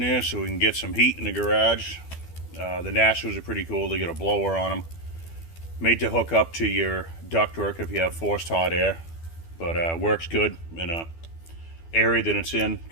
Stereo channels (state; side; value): late; right; 12 ms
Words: so we can get some heat in the garage. The Nashos are pretty cool. They got a blower on them, made to hook up to your ductwork if you have forced hot air, but works good in a area that it's in